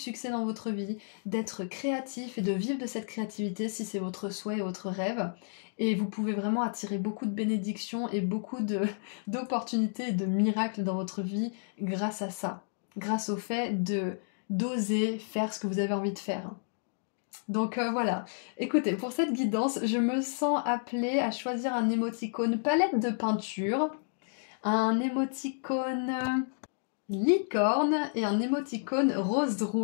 dans votre vie, d'être créatif et de vivre de cette créativité si c'est votre souhait et votre rêve. Et vous pouvez vraiment attirer beaucoup de bénédictions et beaucoup d'opportunités et de miracles dans votre vie grâce à ça. Grâce au fait d'oser faire ce que vous avez envie de faire. Donc voilà, écoutez, pour cette guidance, je me sens appelée à choisir un émoticône palette de peinture, un émoticône licorne et un émoticône rose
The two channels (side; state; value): right; silent; digital silence